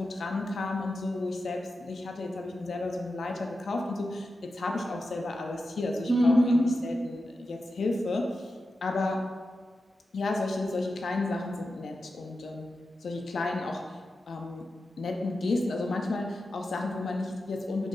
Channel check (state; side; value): normal; both; correlation 0.91